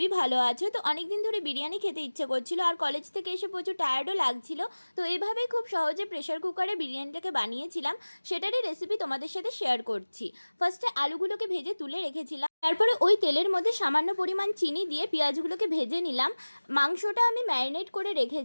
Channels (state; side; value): inverted; both; correlation -1.00